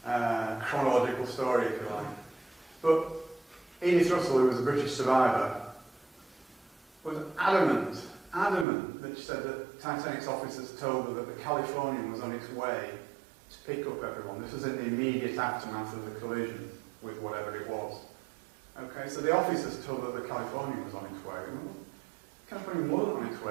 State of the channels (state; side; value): drops out; left; at 8.7 s